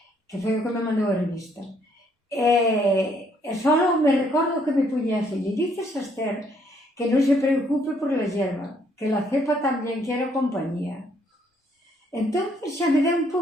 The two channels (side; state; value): both; normal; correlation 0.68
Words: que foi o que me mandou a revista. E só me recordo que me puña así, le dices a Esther que non se preocupe por la hierba, que la cepa tamén quiere compañía. Entón xa me deu un